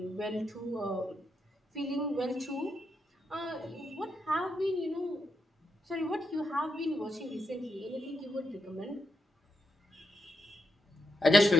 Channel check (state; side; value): normal; both; correlation 0.84